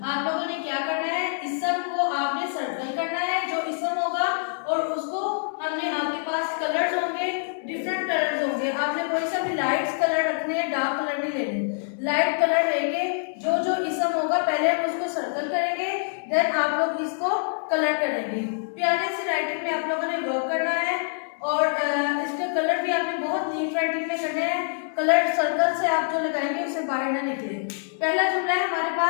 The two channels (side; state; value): right; silent; digital silence